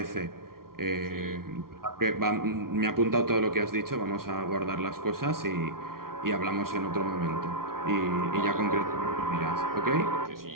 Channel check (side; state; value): left; late; 0.93 ms